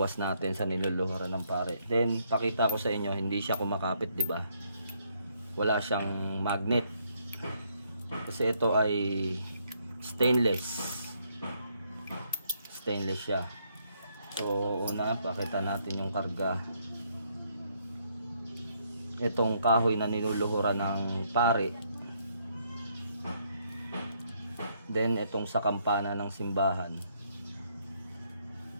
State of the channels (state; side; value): inverted; both; correlation -0.72